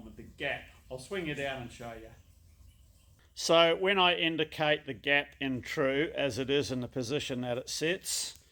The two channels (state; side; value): identical; both; correlation 1.00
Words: with the gap. I'll swing you down and show you. So when I indicate the gap in true, as it is in the position that it sits,